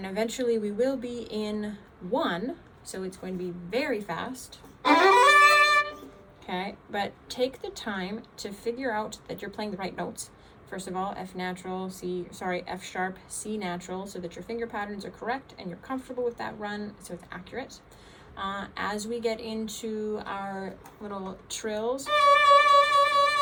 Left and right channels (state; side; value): identical; both; correlation 1.00